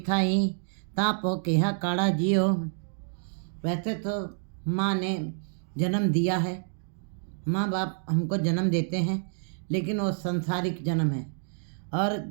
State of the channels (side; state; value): left; silent; digital silence